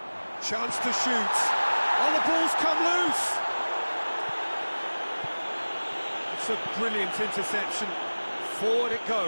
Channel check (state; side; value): inverted; both; correlation -1.00